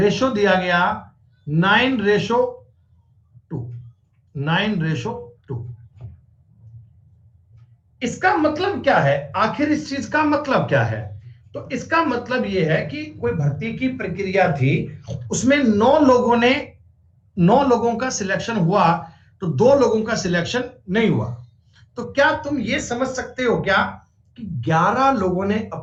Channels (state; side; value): identical; both; correlation 1.00